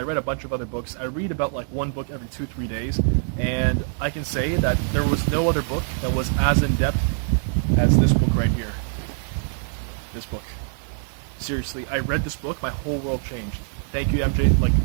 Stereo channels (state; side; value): silent; left; 63 dB below the other